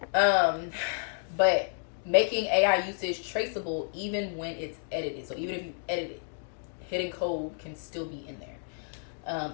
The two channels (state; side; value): silent; right; digital silence